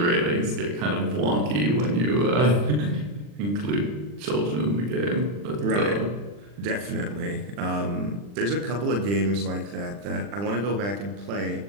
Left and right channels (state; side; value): late; left; 40 ms